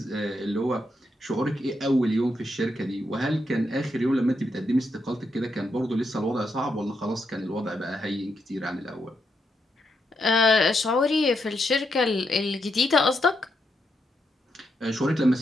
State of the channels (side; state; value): both; normal; correlation 0.81